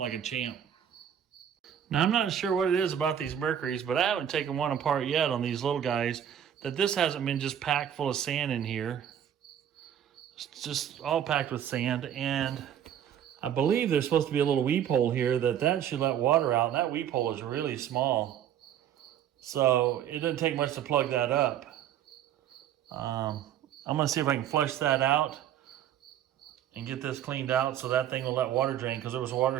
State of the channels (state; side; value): quieter; left; 9.8 dB